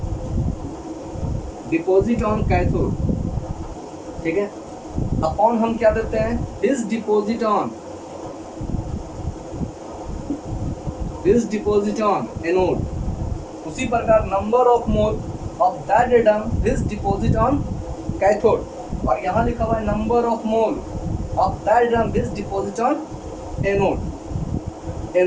on cathode, ठीक है, अपॉन हम क्या देते हैं, इज डिपॉजिट ऑन एनोड। उसी प्रकार number of mole of that atom is deposit on cathode, और यहाँ लिखा हुआ है number of mole of that atom is deposit on anode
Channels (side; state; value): both; identical; correlation 1.00